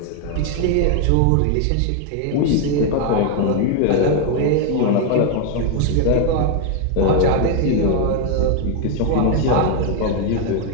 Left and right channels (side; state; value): both; different; correlation 0.01